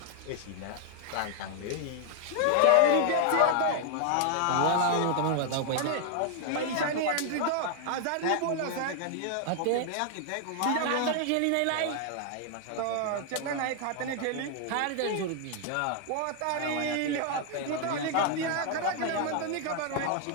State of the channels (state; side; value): different; both; correlation 0.00